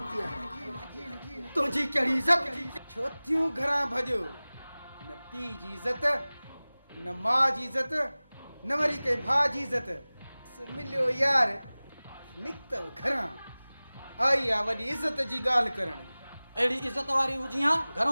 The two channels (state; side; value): inverted; both; correlation -0.99